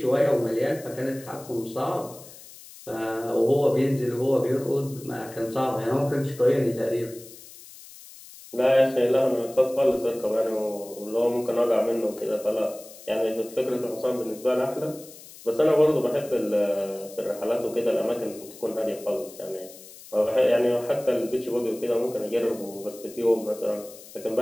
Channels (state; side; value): noise; left; hiss, 18 dB below the sound